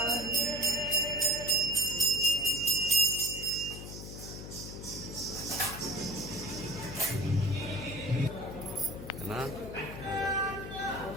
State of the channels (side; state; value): left; noise; hum, 10 dB below the sound